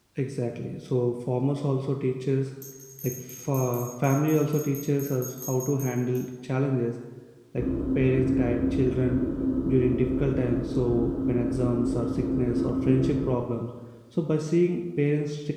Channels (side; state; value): both; identical; correlation 1.00